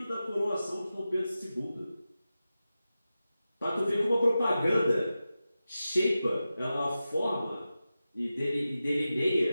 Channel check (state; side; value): inverted; both; correlation -0.93